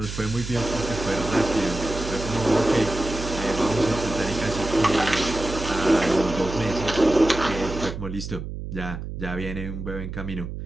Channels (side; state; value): right; noise; hum, 7 dB below the sound